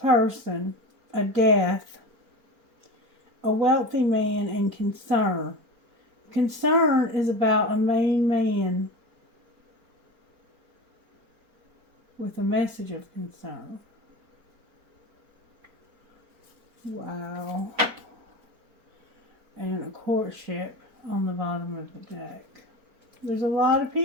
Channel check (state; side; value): late; left; 4.4 ms